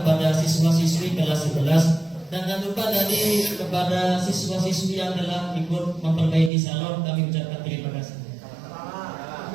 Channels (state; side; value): drops out; left; at 6.5 s